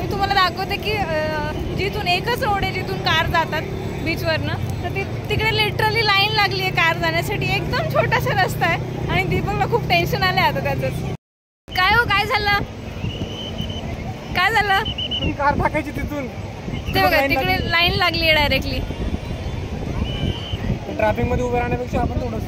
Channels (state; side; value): identical; both; correlation 1.00